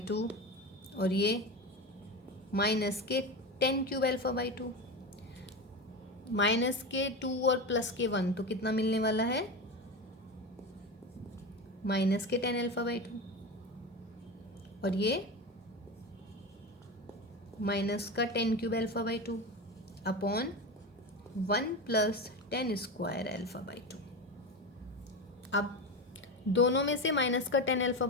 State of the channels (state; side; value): normal; both; correlation 0.22